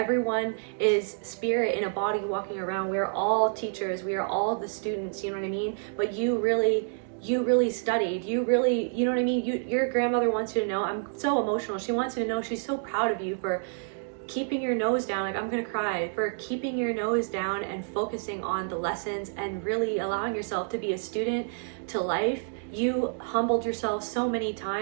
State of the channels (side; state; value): left; silent; digital silence